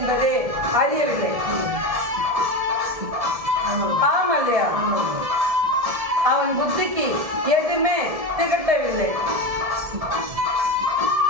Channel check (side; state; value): left; late; 1.7 ms